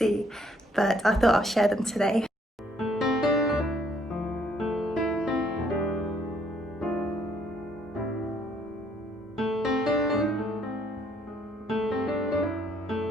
But I thought I'll share them today.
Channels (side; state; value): both; normal; correlation 0.67